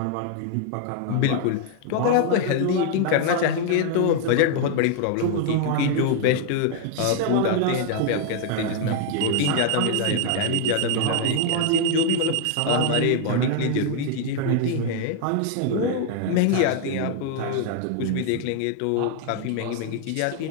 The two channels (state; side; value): different; both; correlation 0.00